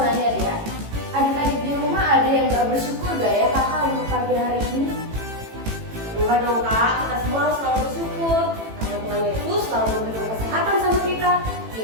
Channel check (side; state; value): left; late; 18 ms